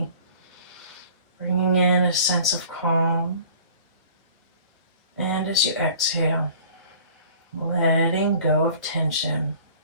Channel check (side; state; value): both; inverted; correlation -0.48